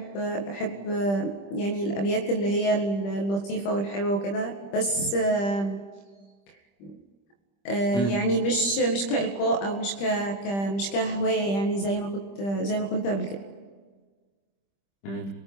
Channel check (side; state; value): right; late; 25 ms